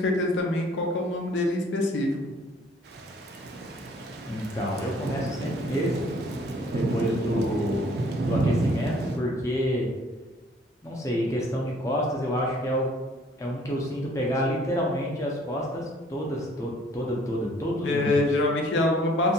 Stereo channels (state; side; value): normal; both; correlation 0.58